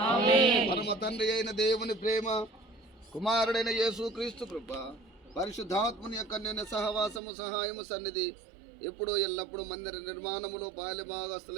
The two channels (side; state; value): left; drops out; at 7.2 s